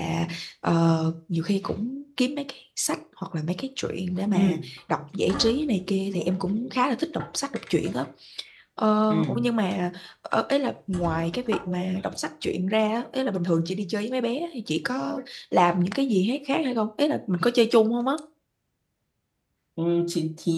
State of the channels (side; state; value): both; identical; correlation 1.00